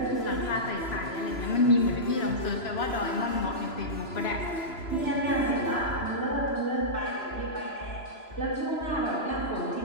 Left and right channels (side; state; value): right; late; 3.0 ms